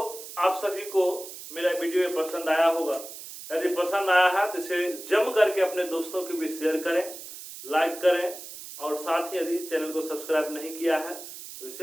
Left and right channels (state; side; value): noise; right; hiss, 12 dB below the sound